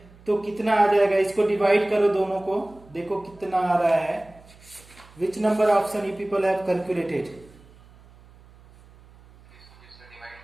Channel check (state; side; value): noise; right; hum, 25 dB below the sound